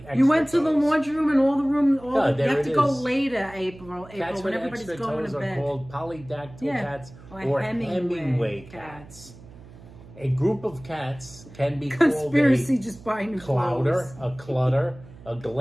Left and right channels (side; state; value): right; noise; hum, 20 dB below the sound